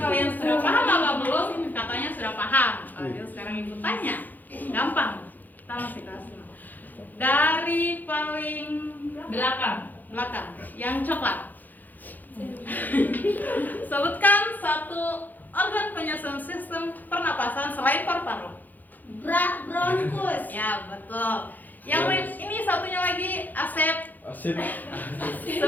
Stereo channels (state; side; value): late; right; 0.084 ms